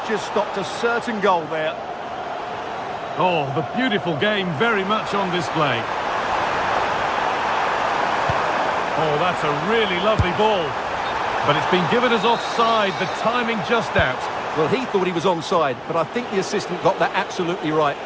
just stopped a certain goal there. Oh, the beautiful game very much on display. Oh, that's a really lovely ball. But it's been given as offside, the timing just out. Well, he thought he was onside, but I think the assistant got that absolutely right.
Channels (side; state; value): both; identical; correlation 1.00